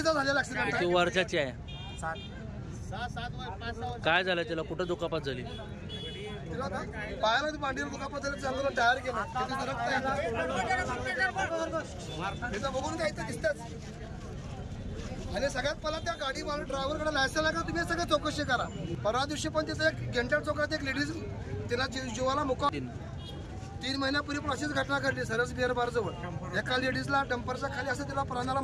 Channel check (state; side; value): identical; both; correlation 1.00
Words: झालेला ऍक्सिडेंट आहे. वर्षाची आहे. काय झालं त्याला? कुठं दुखापत झाली? पायाला मांडीवर दुखापत झाली, चांगलं टायर गेलं, बघून काय इथं दिसतच. आणि सगळ्यात पहिला त्या गाडी मारून ड्रायव्हरकडे लायसन आहे का तुम्ही सगळं चौकशी करा. परवा दिवशी पण तिथं एक गेंटाळ चौकात एक लेडीज तिला जीवाला मुका 3 महिन्यापूर्वी पण अशीच घटना घडली सरस बिअर बार जवळ. एका लेडीजला डंपरच्या खाली असं तिला प्राणाला